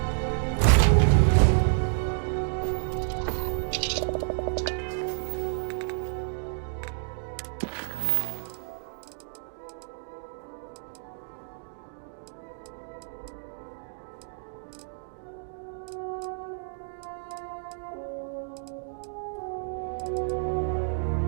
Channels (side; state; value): left; silent; digital silence